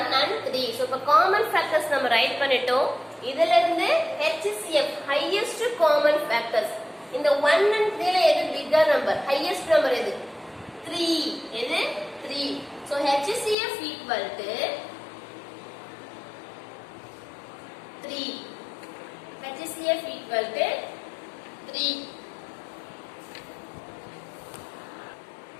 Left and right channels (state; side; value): drops out; right; at 13.6 s